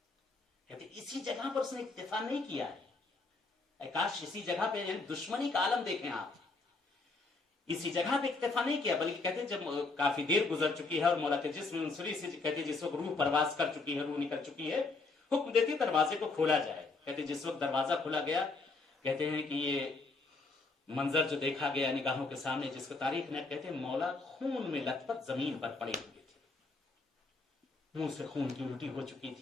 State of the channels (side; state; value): right; quieter; 3.7 dB